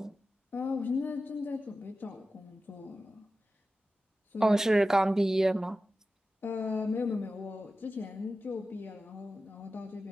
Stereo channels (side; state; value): both; normal; correlation 0.94